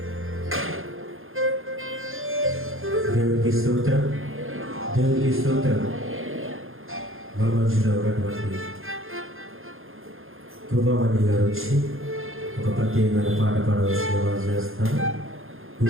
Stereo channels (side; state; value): left; late; 0.60 ms